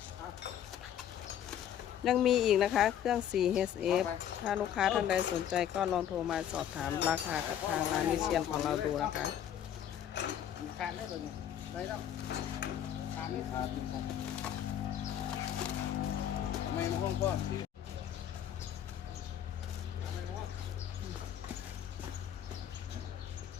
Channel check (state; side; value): quieter; right; 10.1 dB